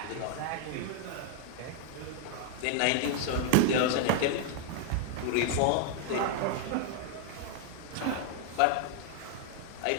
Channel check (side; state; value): both; different; correlation 0.00